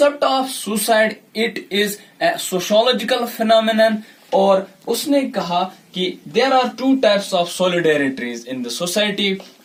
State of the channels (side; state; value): both; identical; correlation 1.00